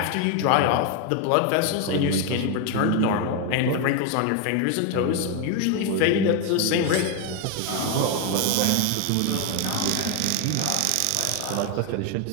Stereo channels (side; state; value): both; different; correlation 0.01